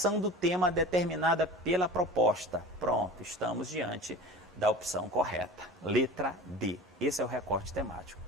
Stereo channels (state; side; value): normal; both; correlation 0.37